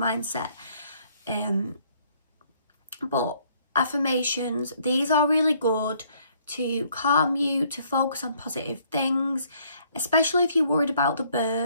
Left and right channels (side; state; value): both; inverted; correlation -0.65